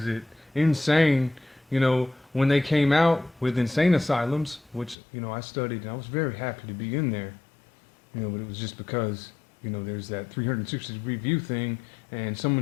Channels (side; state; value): right; drops out; at 5.0 s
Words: it insane, you know, when they came out with insane asylums, which, you know, I studied and I was very happy to be in there, you know, but it was just because, you know, there's that 360-degree view thing, and